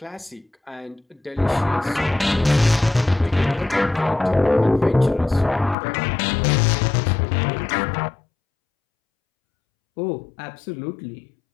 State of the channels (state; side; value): drops out; right; at 5.8 s